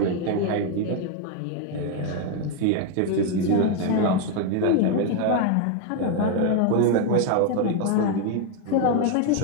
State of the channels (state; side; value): different; both; correlation 0.01